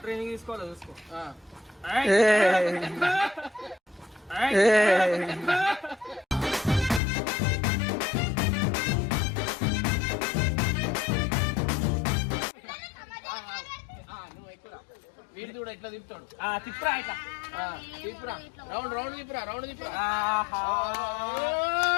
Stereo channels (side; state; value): right; drops out; at 7.0 s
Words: ట్రైనింగ్ తీసుకోవాలో చూసుకో. నువ్వు ఎక్కువ వీడి కూడా ఎట్లా తిప్పుతాడు. తిప్పురా ఇట్లా తిప్పురా, రౌండ్ తిప్పురా.